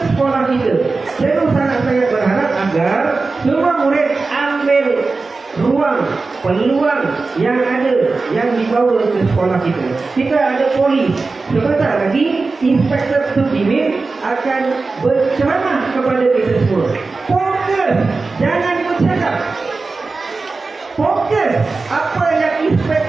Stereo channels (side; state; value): left; quieter; 3.9 dB